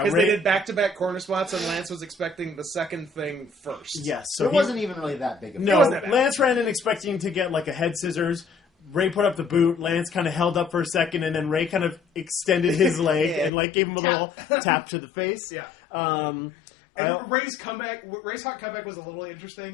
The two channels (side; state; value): right; drops out; at 13.5 s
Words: Because Ray. they did back-to-back corner spots, and Lance was expecting the second thing first. Yes, so it he- wasn't even really that big of a No, wasn't that bad. Lance ran in expecting to get like a head scissors. Ray put up the boot. Lance kind of held up for a second, and then Ray kind of extended his leg Yeah. and like gave him a Tap. little tap to the face. Yeah. Um, And I- Ray's hot comeback was a little